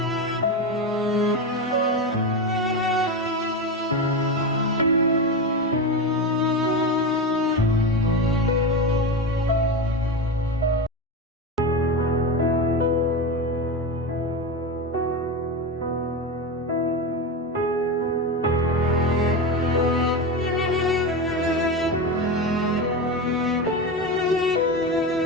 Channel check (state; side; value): normal; both; correlation 0.18